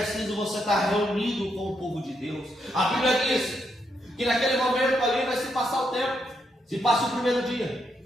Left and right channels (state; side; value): normal; both; correlation 0.79